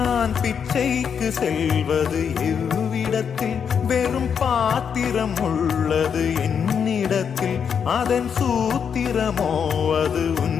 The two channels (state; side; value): quieter; right; 7.2 dB